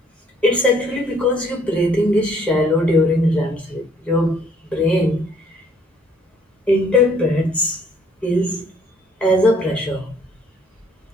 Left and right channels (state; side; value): normal; both; correlation 0.62